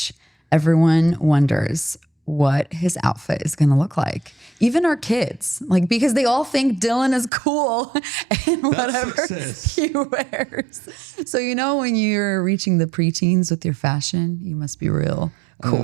everyone wonders what his outfit is going to look like. Even our kids, like, because they all think Dylan is cool and whatever success. he wears. So, you know, when you're reaching the preteens with your fashion, you must be real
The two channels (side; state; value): left; drops out; at 7.3 s